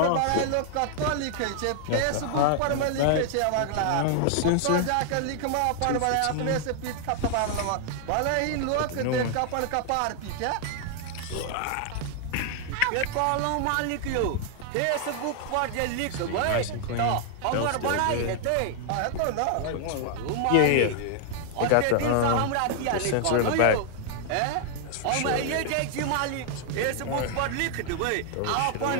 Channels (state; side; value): different; both; correlation 0.00